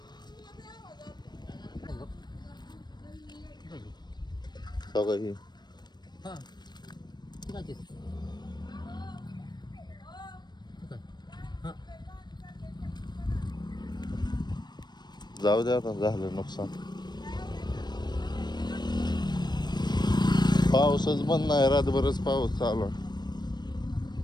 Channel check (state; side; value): late; right; 0.21 ms